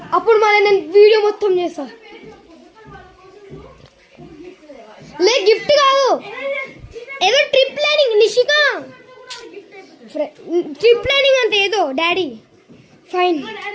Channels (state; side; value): identical; both; correlation 1.00